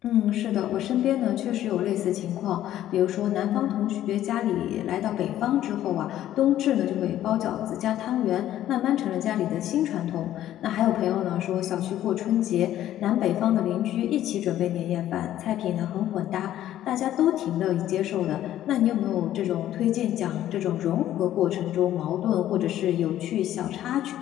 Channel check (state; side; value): quieter; right; 12.5 dB